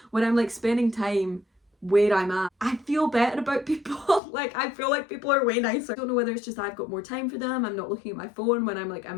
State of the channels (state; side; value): drops out; right; at 4.2 s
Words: when I'm like spending time where I'm at. I feel better about people. Like, I feel like people are way nicer. I don't know whether it's just I've got more time for them, I'm not looking at my phone when I'm like